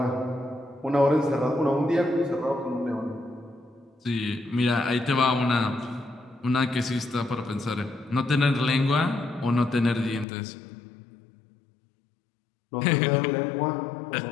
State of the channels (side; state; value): right; drops out; at 10.2 s